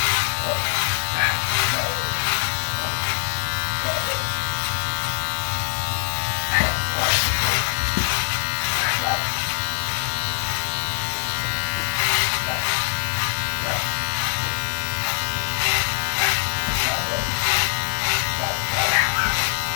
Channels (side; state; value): right; silent; digital silence